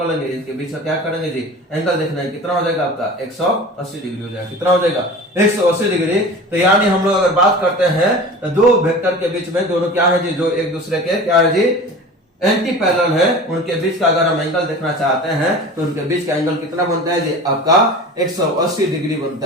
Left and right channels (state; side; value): normal; both; correlation 0.36